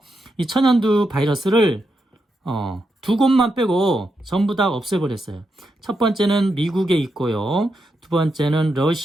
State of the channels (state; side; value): normal; both; correlation 0.84